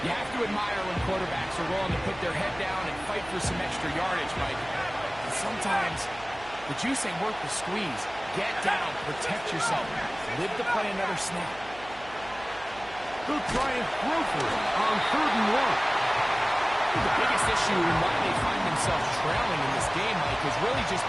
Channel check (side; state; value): right; noise; hum, 19 dB below the sound